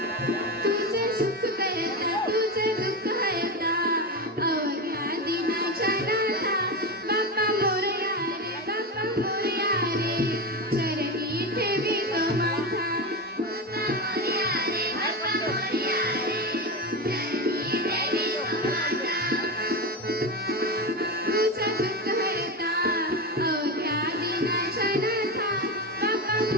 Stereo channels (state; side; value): normal; both; correlation 0.18